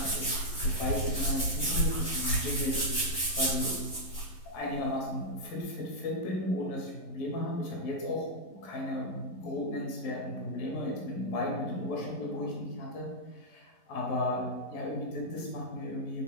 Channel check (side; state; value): right; late; 11 ms